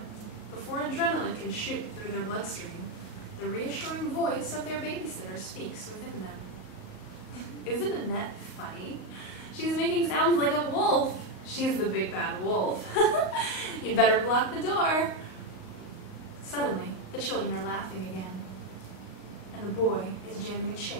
before adrenaline can shoot through their bloodstream, the reassuring voice of their babysitter speaks within them. Isn't Annette funny? She's making sounds like a wolf. She's the big bad wolf. You'd better block the door. Suddenly, the children are laughing again. And the boy is jamming a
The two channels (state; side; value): late; right; 38 ms